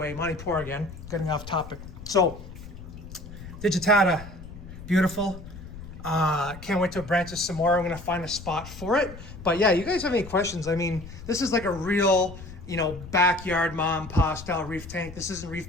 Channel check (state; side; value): noise; left; rumble, 14 dB below the sound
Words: Montipora again, getting off topic. So, digitata, beautiful. Can't wait to branch this some more. I'm gonna find a spot for it. But yeah, you guys have any questions? I mean, this is like a real, you know, backyard mom and pa style reef tank. This isn't